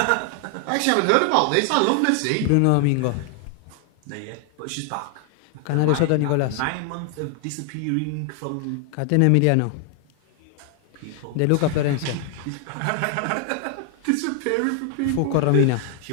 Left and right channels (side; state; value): both; different; correlation 0.00